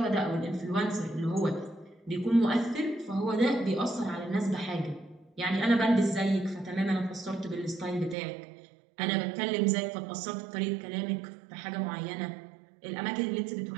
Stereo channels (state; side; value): drops out; left; at 8.2 s